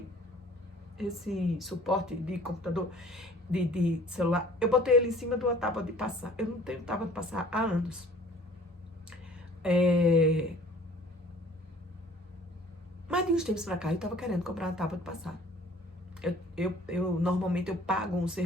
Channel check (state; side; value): normal; both; correlation 0.51